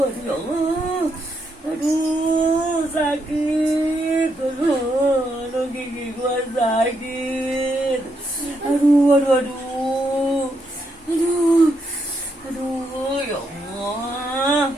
Aduh ya Allah, aduh sakit. Aduh gigi gua sakit. Aduh, ya Allah.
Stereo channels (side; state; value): both; normal; correlation 0.79